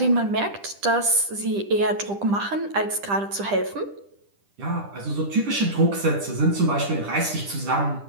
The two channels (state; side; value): late; left; 10 ms